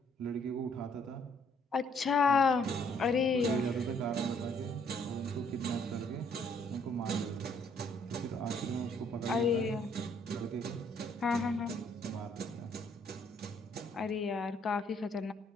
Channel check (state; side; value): normal; both; correlation 0.66